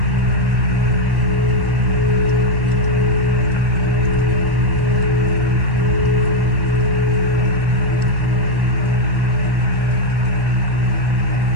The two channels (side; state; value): left; late; 1.3 ms